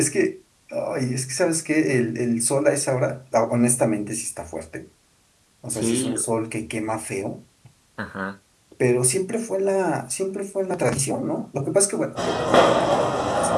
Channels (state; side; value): identical; both; correlation 1.00